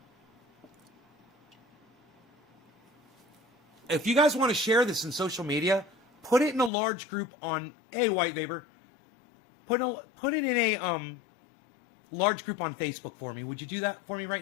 If you guys want to share this in social media, put it in a large group on White Vapor. Put it in a large group on Facebook for me. Would you do that for me right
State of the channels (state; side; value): drops out; right; at 6.7 s